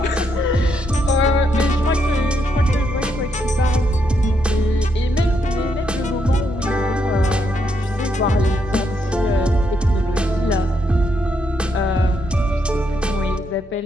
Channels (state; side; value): normal; both; correlation 0.78